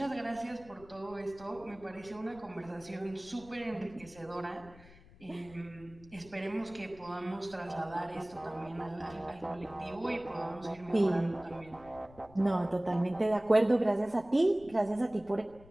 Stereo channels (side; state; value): left; noise; rumble, 22 dB below the sound